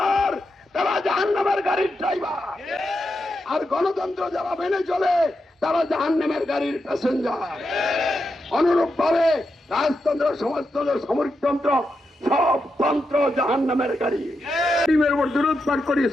তারা জাহান্নামের গাড়ির ড্রাইভার, আর গণতন্ত্র যারা মেনে চলে তারা জাহান্নামের গাড়ির প্যাসেঞ্জার। অনুরূপ ভাবে রাজতন্ত্র, সমাজতন্ত্র, সামরিকতন্ত্র সব তন্ত্র জাহান্নামের গাড়ি। দরুদ পাঠ করি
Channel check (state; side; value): normal; both; correlation 0.86